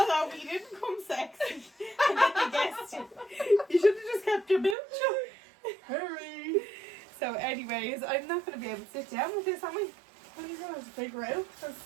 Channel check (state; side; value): drops out; left; at 4.8 s